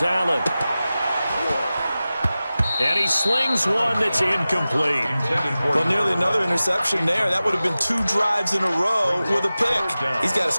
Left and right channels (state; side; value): inverted; both; correlation -0.96